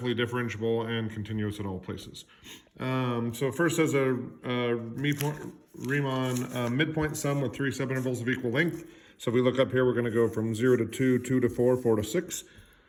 differentiable and continuous at all places. So first has a Riemann midpoint sum with 3 subintervals of equal length. So if we look up here, we're going to go from 0 to 2, 2 to 4, 4 to 6.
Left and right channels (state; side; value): identical; both; correlation 1.00